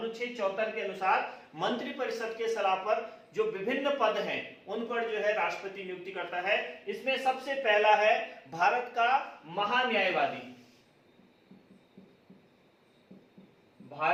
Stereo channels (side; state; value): both; identical; correlation 1.00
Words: 74 के अनुसार मंत्री परिषद के सलाह पर जो विभिन्न पद हैं उन पर जो है राष्ट्रपति नियुक्ति करता है। इसमें सबसे पहला है भारत का महान्यायवादी।